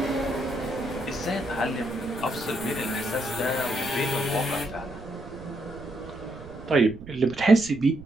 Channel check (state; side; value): noise; right; rumble, 16 dB below the sound